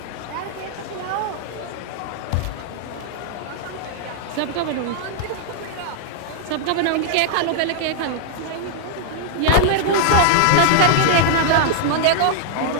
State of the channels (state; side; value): different; both; correlation -0.01